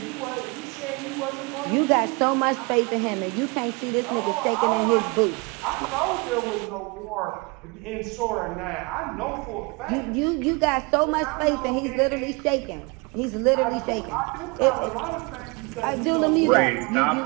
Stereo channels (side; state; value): left; quieter; 28.5 dB